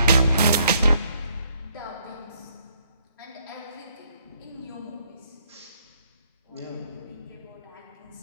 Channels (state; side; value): inverted; both; correlation -0.69